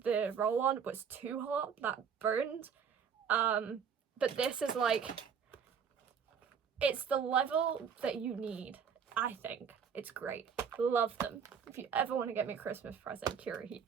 roll-on was too hot, that burned. But this is like, it's the level that you need, I think. It's great. Love them. If you ever want to get me a Christmas present, Cura heat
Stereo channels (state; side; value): quieter; left; 7.0 dB